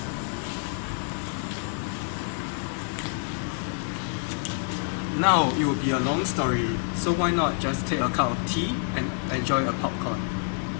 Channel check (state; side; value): silent; right; 60 dB below the other